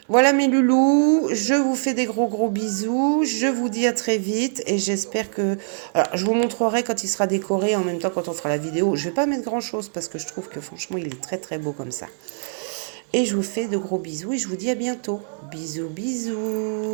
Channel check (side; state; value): left; silent; digital silence